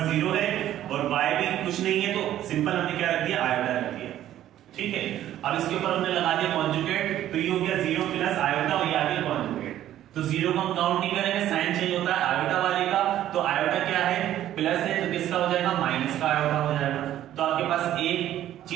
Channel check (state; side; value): quieter; left; 12.4 dB